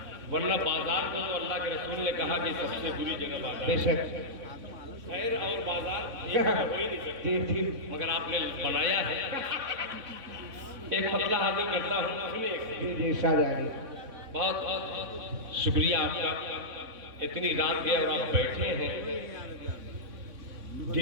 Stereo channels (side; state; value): left; late; 3.6 ms